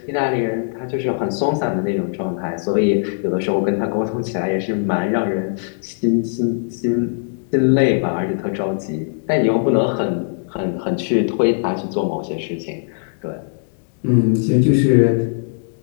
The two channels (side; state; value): right; silent; digital silence